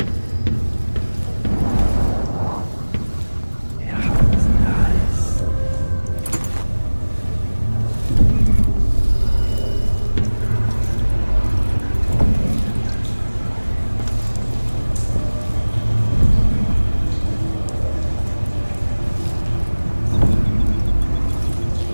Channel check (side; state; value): both; inverted; correlation -1.00